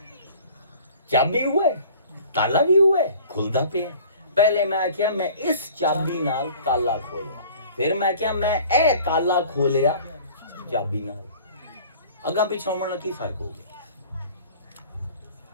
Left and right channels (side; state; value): both; inverted; correlation -0.48